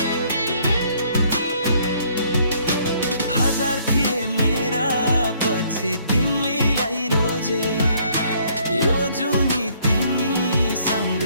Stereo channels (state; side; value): inverted; both; correlation -0.64